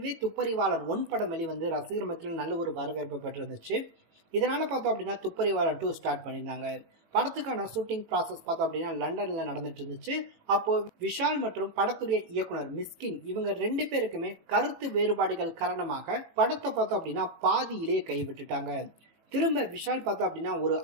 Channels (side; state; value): left; late; 18 ms